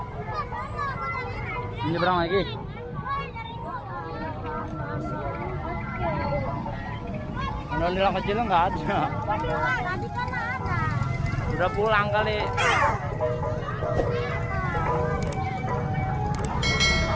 Nyebrang lagi. Ondel-ondel kecil nggak ada. Tadi kan ada. Udah pulang kali.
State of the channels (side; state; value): both; identical; correlation 1.00